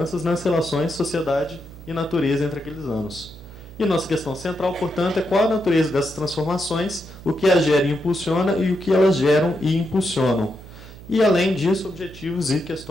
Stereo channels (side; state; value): right; noise; hum, 17 dB below the sound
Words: nas relações sociedade e natureza entre aqueles anos. E nossa questão central, portanto, é qual a natureza dessas transformações, o que as gera e impulsiona e o que elas geram e impulsionam. E, além disso, objetivos e